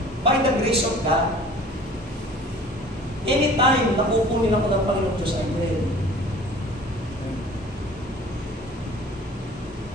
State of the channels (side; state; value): both; normal; correlation 0.47